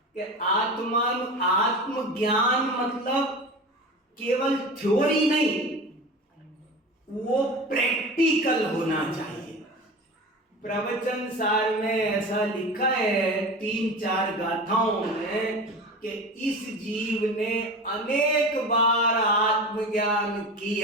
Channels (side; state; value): both; normal; correlation 0.31